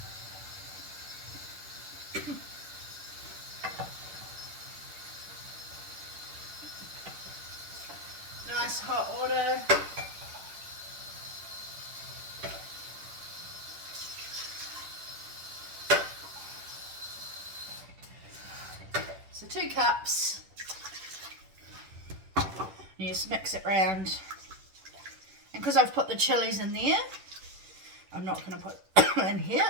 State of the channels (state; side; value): late; left; 10 ms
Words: nice hot water. So 2 cups. You just mix it round. And because I've put the chilies in there, I'm not going to put in here.